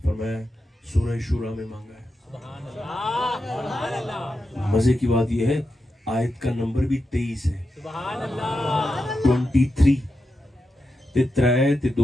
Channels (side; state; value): both; normal; correlation 0.88